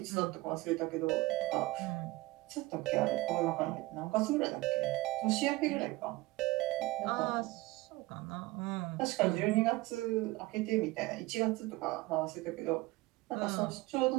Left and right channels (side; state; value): left; quieter; 20.6 dB